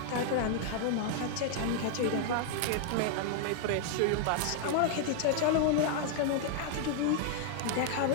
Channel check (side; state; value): both; different; correlation 0.00